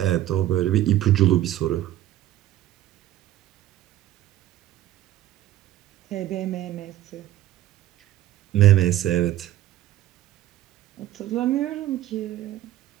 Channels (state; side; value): quieter; left; 13.7 dB